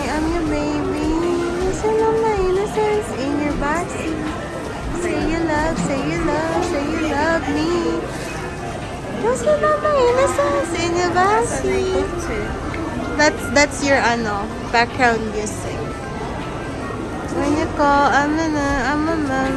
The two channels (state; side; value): identical; both; correlation 1.00